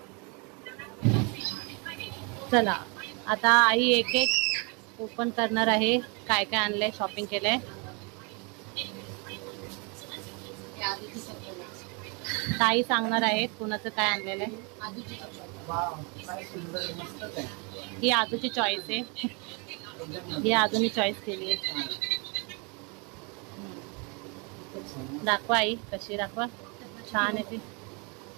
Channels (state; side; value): quieter; left; 32.7 dB